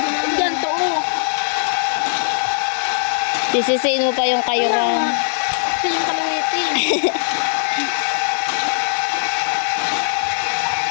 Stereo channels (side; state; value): right; silent; 66 dB below the other